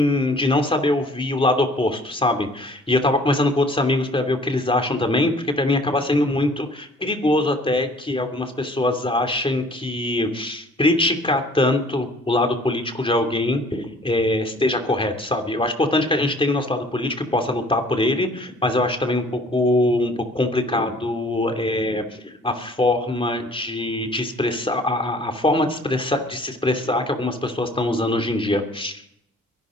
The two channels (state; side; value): normal; both; correlation 0.53